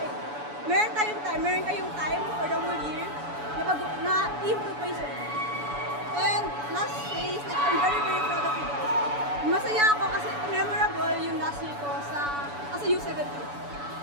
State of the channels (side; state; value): left; late; 7.0 ms